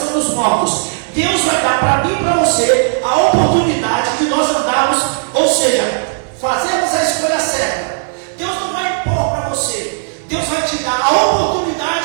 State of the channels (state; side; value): silent; left; digital silence